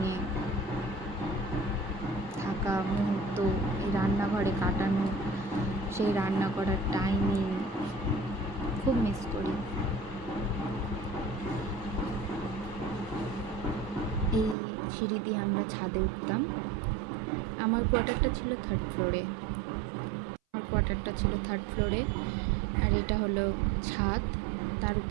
থাকা মুহূর্ত, এই রান্নাঘরে কাটানো সেই রান্না করার টাইমিং খুব মিস করি। এই সিঁড়ি দিয়ে আমরা ছাদে উঠতাম। আমার কোয়ার্টারটা ছিল থার্ড ফ্লোরে, আর এটা হলো ছাদ, তার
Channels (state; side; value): drops out; left; at 14.6 s